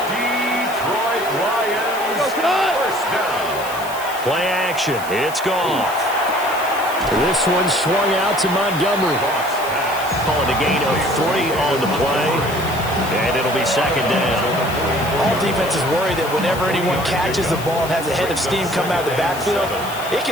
Detroit Lions first down. Play action. It's Goff. This one swung out to Montgomery. Calling a gain of 3 on the play. And it'll be second down. All defenses worry that whenever anyone catches the ball and has a head of steam come out of the backfield, it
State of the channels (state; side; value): noise; left; hiss, 14 dB below the sound